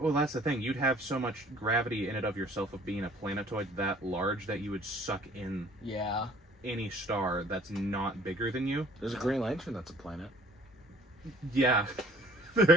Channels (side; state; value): both; normal; correlation 0.54